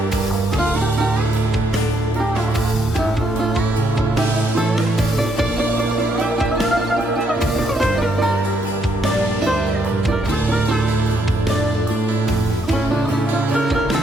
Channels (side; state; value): both; normal; correlation 0.73